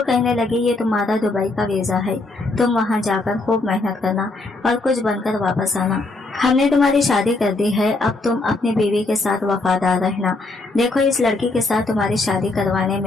लगे ये तुम्हारा दुबई का वीजा है, तुम वहाँ जाकर खूब मेहनत करना और कुछ बनकर वापस आना। हमने तुम्हारी शादी कर दी है, अब तुम अपनी बीवी के साथ वफादार रहना। देखो इस लड़की के साथ तुम्हारी शादी करवाने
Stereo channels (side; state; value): right; quieter; 3.2 dB